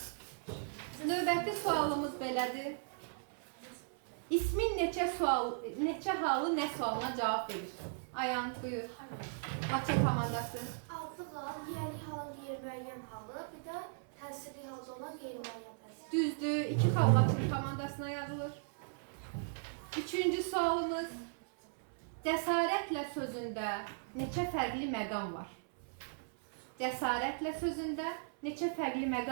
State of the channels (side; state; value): left; silent; 53 dB below the other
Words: Növbəti sualımız belədir. İsmin neçə halı nə sualına cavab verir? Ayan, buyur. Laçın komandası. Adlı hal, yiyəli halın qeyri-müəyyən halı, bir də təsirli halda olan qeyri-müəyyən təsir. Düzdür. 2 xal Laçın komandasına yazılır. Üçüncü sualımız. Cəsarətlə sözündə neçə fərqli məqam var? Cəsarətlə sözündə neçə fərqli